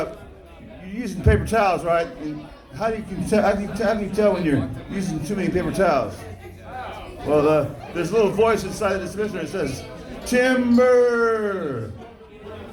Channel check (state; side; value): identical; both; correlation 1.00